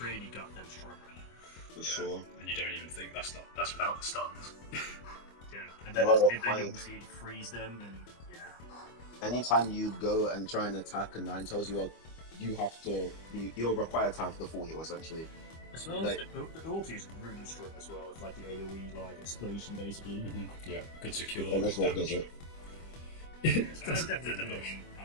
goddamn strong right now. For sure. And you don't even think that's without the stuns. Yeah, and then you obviously freeze them, and yeah. Anytime you go and try and attack a Ninetales, you're required to have the full heal essentially. As well as the ulti is really strong as well, with like the AoE like explosion basically. Yeah, good secure. And that's what does it. It's definitely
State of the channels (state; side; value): late; right; 25 ms